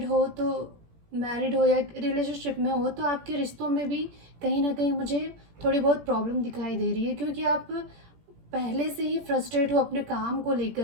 हो या रिलेशनशिप में हो, तो आपके रिश्तों में भी कहीं ना कहीं मुझे थोड़ी बहुत प्रॉब्लम दिखाई दे रही है, क्योंकि आप पहले से ही फ्रस्ट्रेट हो अपने काम को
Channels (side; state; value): left; late; 17 ms